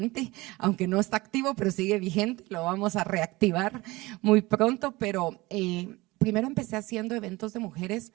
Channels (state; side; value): quieter; left; 21.2 dB